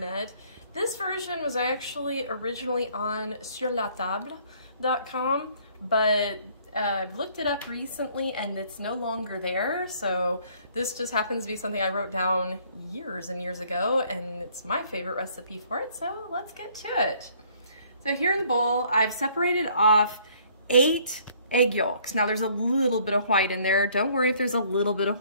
This version was actually originally on surlatable.com, but I've looked it up recently and it's no longer there. So this just happens to be something I wrote down years and years ago, and it's my favorite recipe for it. So let's get to it. So here in the bowl, I've separated off 8 egg yolks. Now there's a little bit of white in there. Don't worry if there's a little bit of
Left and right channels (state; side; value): inverted; both; correlation -0.61